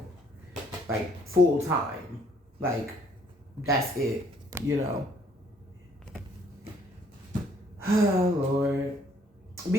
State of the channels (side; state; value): both; normal; correlation 0.64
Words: Like full time. Like that's it, you know. Oh Lord.